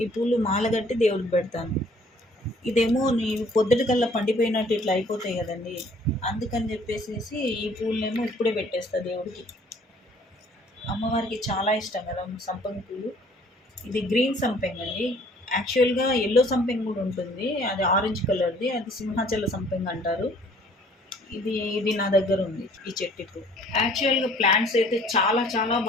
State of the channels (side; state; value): both; normal; correlation 0.57